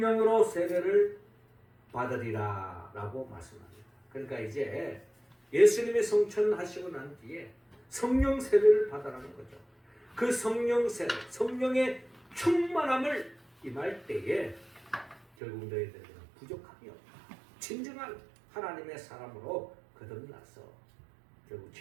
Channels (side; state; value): left; drops out; at 15.2 s